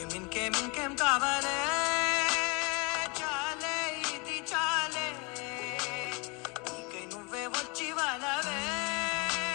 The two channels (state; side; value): quieter; right; 28.1 dB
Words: ఇంకేం కావాలే చాలే ఇది చాలే ఇక నువ్వే వచ్చి వాళ్ళవే